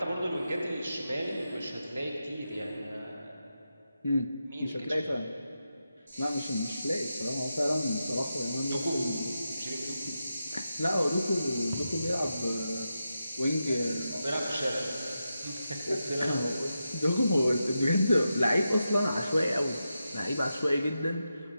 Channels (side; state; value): both; inverted; correlation -0.89